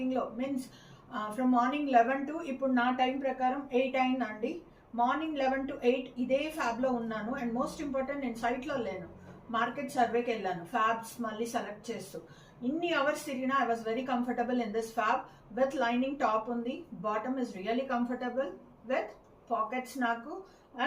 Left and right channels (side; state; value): both; identical; correlation 1.00